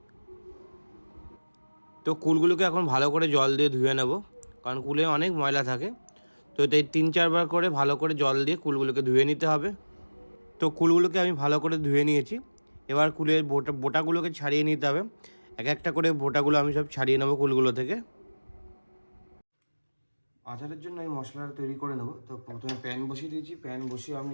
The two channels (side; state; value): both; inverted; correlation -1.00